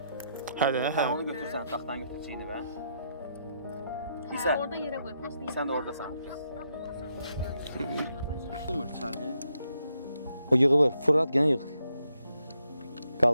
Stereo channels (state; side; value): inverted; both; correlation -0.79